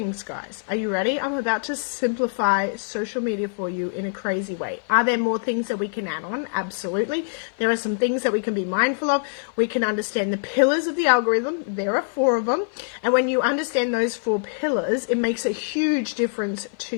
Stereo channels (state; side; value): silent; right; 56 dB below the other